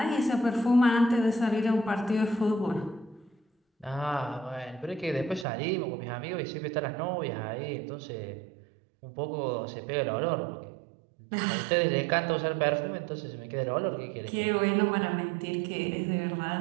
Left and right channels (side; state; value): left; drops out; at 5.5 s